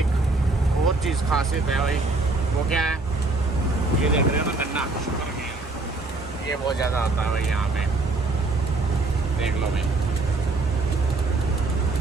और चीज़ खासियत है भाई, वो क्या है, ये देख रहे हो ना गन्ना, शुगर केन, ये बहुत ज़्यादा आता है भाई यहाँ पे, देख लो भाई।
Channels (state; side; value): quieter; left; 3.3 dB